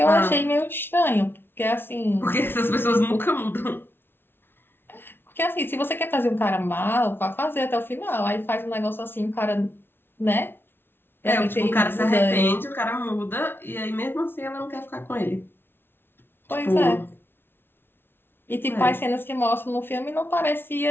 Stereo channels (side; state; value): right; late; 0.11 ms